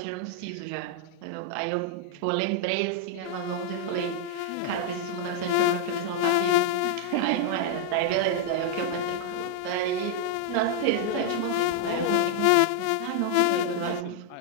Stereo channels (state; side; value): different; both; correlation -0.01